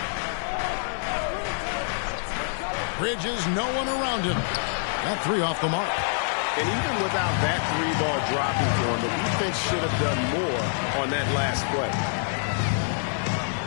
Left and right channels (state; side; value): silent; right; 60 dB below the other